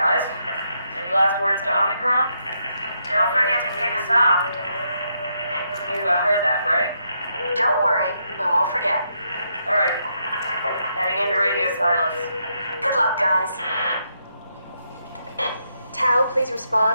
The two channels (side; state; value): both; inverted; correlation -0.79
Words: any last words to Omicron? Don't forget to pick us up. You heard that, right? Don't worry, we won't forget. Alright. Heading into radio silence. Good luck, guys. Tau, please